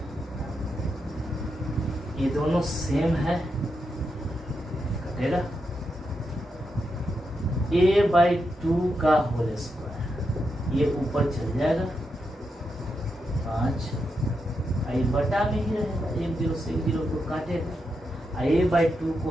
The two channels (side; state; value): both; normal; correlation 0.85